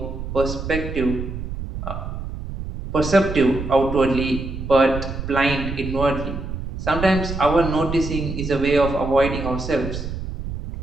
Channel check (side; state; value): right; noise; rumble, 7 dB below the sound